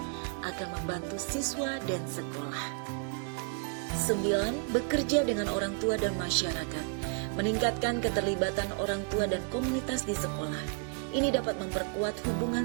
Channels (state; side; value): quieter; left; 38.1 dB